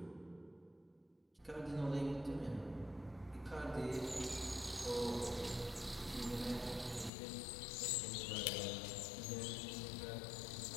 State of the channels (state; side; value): drops out; right; at 7.1 s